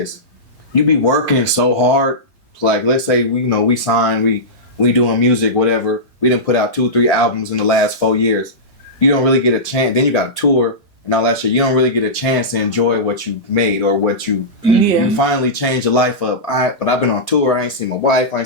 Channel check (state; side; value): normal; both; correlation -0.15